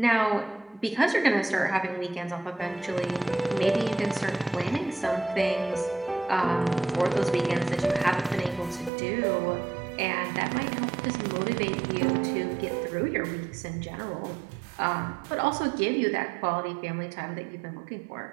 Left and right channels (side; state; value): left; drops out; at 8.9 s